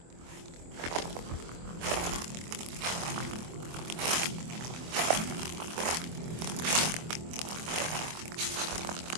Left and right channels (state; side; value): late; left; 24 ms